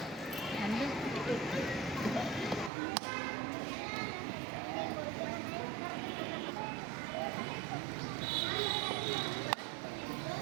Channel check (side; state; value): left; drops out; at 2.7 s